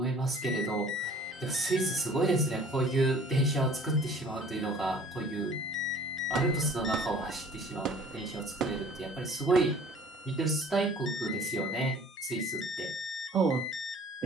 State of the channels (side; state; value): both; normal; correlation 0.50